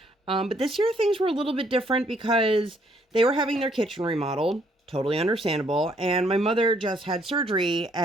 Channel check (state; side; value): normal; both; correlation 0.67